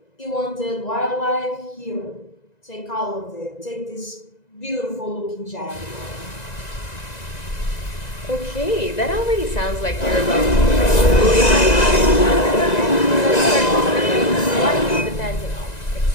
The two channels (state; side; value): late; right; 1.9 ms